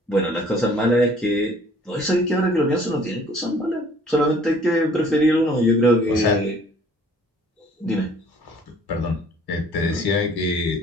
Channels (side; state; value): both; normal; correlation 0.55